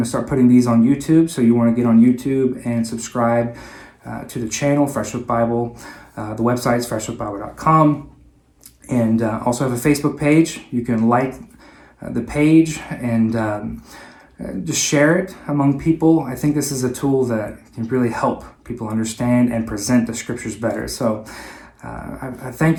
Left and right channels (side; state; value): both; identical; correlation 1.00